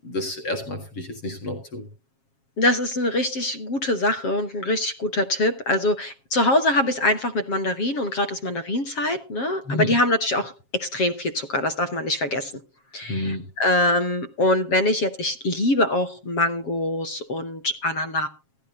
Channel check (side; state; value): right; late; 7.4 ms